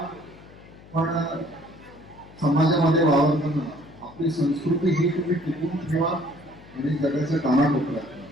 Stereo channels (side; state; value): left; noise; hum, 21 dB below the sound